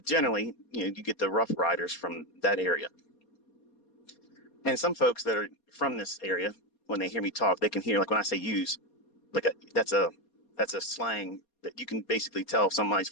generally, you get the Rough Riders from that area. And some folks that are from this area, when they hear me talk, they can hear, like when I say use, like that's a slang that you can basically tell if somebody's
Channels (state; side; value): late; right; 4.2 ms